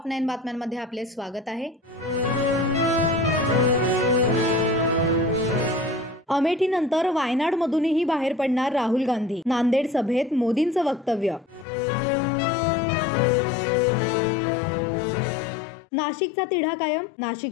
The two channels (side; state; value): right; drops out; at 11.7 s